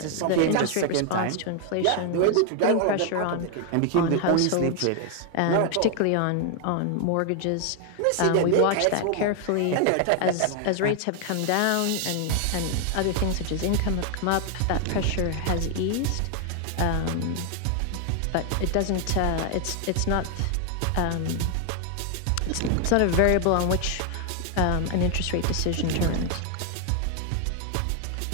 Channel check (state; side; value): different; both; correlation 0.00